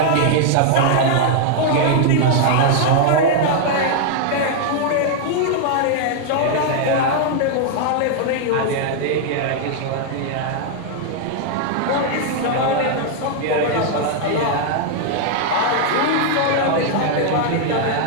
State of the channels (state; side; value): different; both; correlation 0.00